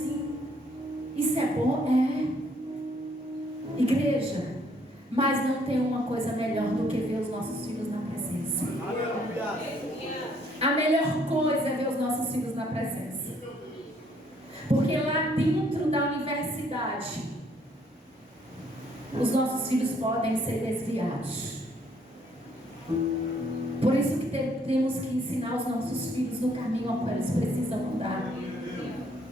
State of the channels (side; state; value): both; normal; correlation 0.65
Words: Isso é bom? É. Igreja, mas não tem uma coisa melhor do que ver os nossos filhos na presença. A melhor coisa é ver os nossos filhos na presença. Porque lá dentro da universidade, os nossos filhos podem ser desviados. Por isso que temos que ensinar os nossos filhos no caminho ao qual eles precisam andar.